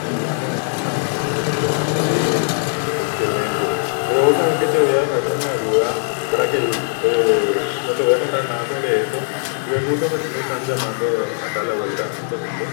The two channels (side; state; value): right; silent; digital silence